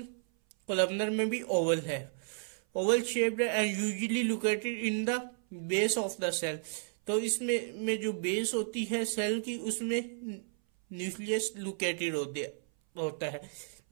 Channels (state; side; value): silent; left; 56 dB below the other